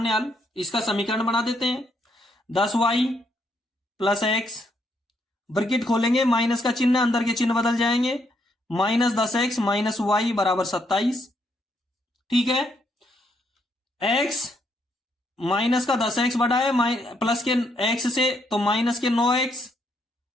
हल। इसका समीकरण बना देते हैं, 10y प्लस x, ब्रैकेट खोलेंगे, माइनस का चिन्ह, अंदर के चिन्ह बदल जाएंगे, -10x माइनस y बराबर 27। ठीक है, x माइनस का 10x बड़ा है प्लस के x से, तो माइनस के 9x,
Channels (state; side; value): normal; both; correlation 0.74